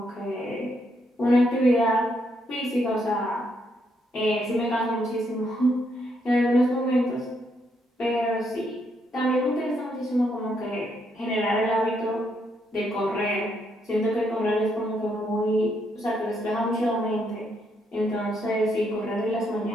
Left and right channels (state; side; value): normal; both; correlation 0.76